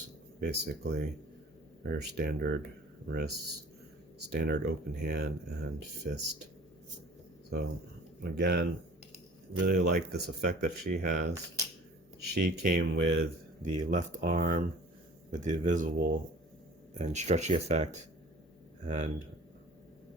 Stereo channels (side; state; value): both; normal; correlation 0.47